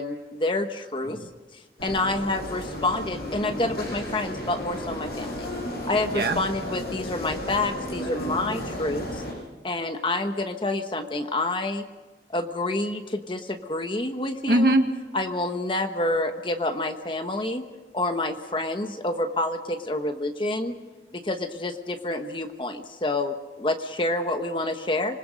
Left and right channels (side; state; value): both; normal; correlation 0.34